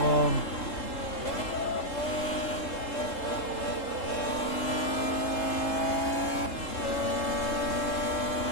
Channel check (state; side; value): late; right; 3.9 ms